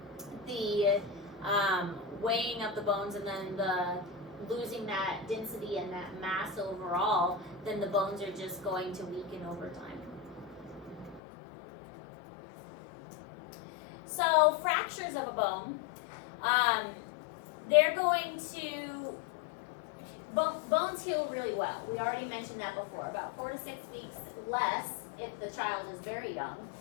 weighing of the bones and then the losing that density and that mass overall, then the bones are just going to weaken over time. So fractures of a bone, they're going to, bones heal really well. We already mentioned that before, about 4 to 6 weeks less if the child is very young.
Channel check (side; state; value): right; drops out; at 11.2 s